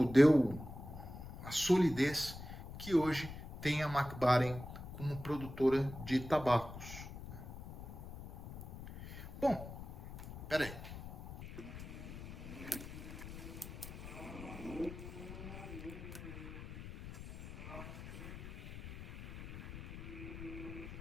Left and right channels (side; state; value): left; noise; rumble, 11 dB below the sound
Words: deu a solidez que hoje tem a Mac Baren como produtora de tabacos. Bom, peraí.